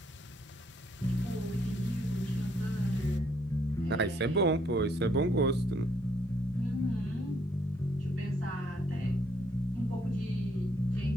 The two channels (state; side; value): normal; both; correlation 0.69